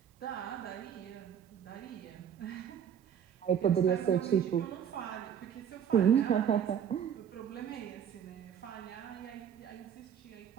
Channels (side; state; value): left; quieter; 8.6 dB